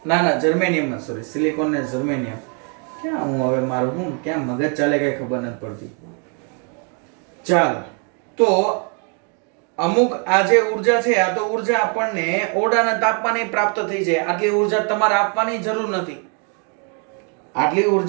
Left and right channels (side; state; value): left; quieter; 39.5 dB